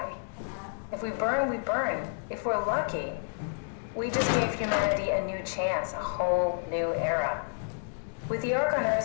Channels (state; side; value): silent; right; digital silence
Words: If we burn, we burn. If we're lucky, we just gave humanity a new chance, a whole new era. With the Ark on